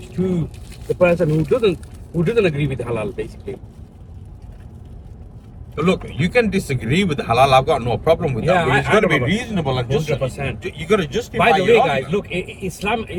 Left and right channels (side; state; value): both; identical; correlation 1.00